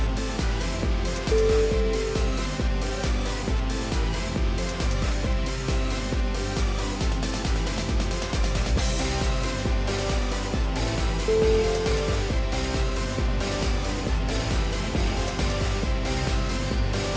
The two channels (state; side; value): identical; both; correlation 1.00